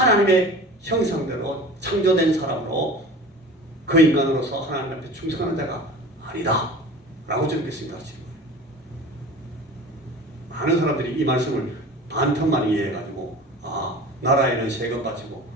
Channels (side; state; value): both; normal; correlation 0.39